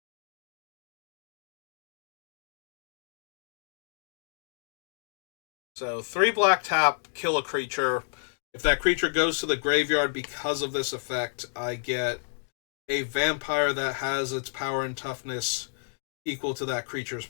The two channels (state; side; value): silent; right; digital silence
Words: So 3 black tap, kill a creature. If that creature goes to the graveyard because of this effect, I get a vampire that has its power and toughness equal to that creature's